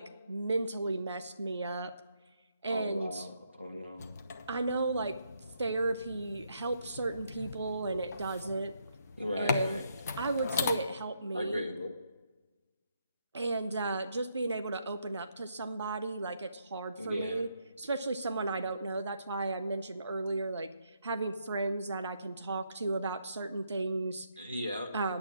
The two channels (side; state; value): both; inverted; correlation -0.76